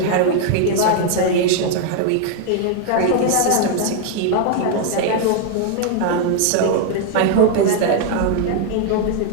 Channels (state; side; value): different; both; correlation 0.00